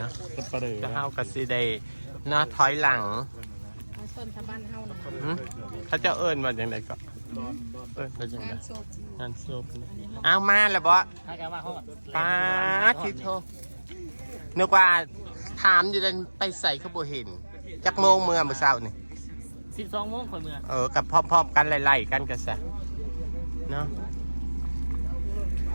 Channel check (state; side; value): inverted; both; correlation -1.00